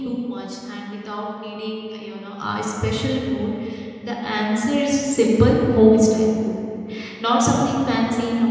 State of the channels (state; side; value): identical; both; correlation 1.00